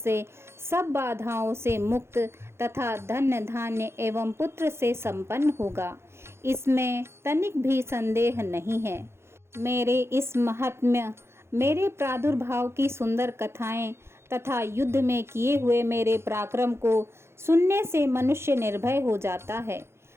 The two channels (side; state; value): left; late; 0.12 ms